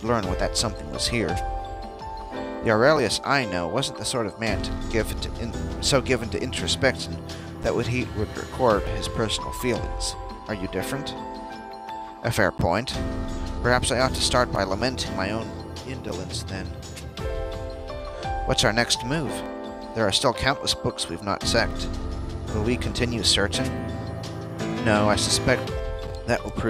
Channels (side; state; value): both; identical; correlation 1.00